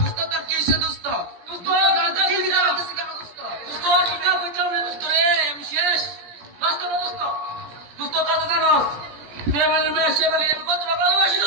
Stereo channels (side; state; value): left; late; 17 ms